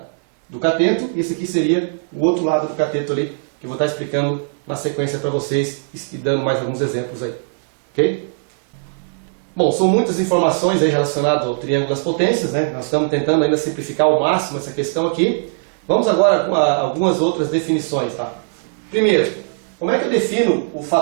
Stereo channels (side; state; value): left; silent; digital silence